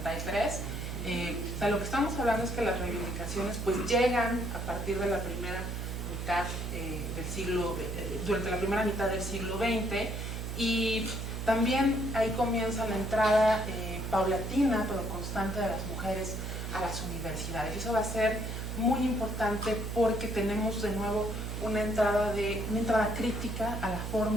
O sea, lo que estamos hablando es que las reivindicaciones pues llegan a partir de la primera mitad del siglo, durante la primera mitad del siglo XX, y también ahí comienza la entrada paulatina pero constante de las mujeres a las universidades. Y eso va a ser muy importante porque tenemos de nuevo una entrada crítica a la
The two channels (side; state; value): right; noise; hum, 4 dB below the sound